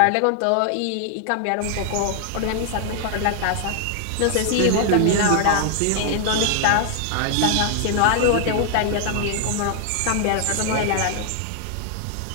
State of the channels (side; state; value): both; different; correlation 0.00